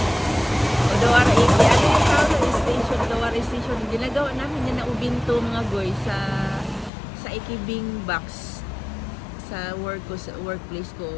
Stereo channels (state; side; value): drops out; right; at 6.9 s